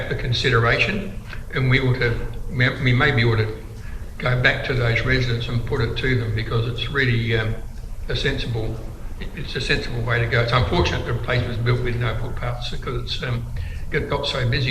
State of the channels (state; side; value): identical; both; correlation 1.00